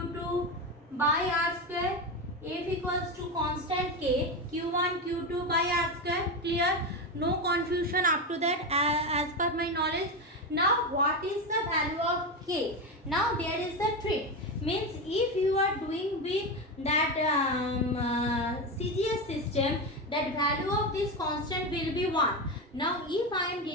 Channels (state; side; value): normal; both; correlation 0.16